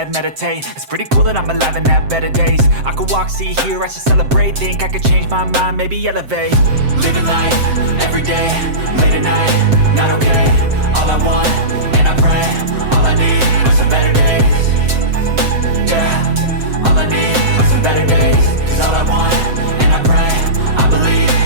meditate. It's pretty cool that I'm alive and have better days. I could walk, see, hear, I should celebrate. Think I could change my mind, maybe elevate. Living life, every day, late at night, not okay. All I want, and I pray, all I need are some better days. Yeah, all I need are some better days. Cause all I want, and I pray, I believe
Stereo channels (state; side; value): late; left; 7.7 ms